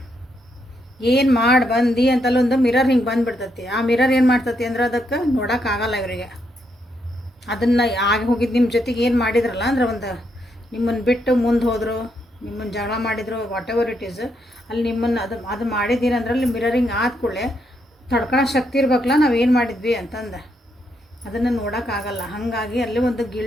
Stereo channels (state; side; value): normal; both; correlation 0.78